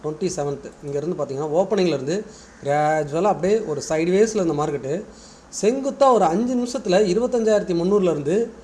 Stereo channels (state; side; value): identical; both; correlation 1.00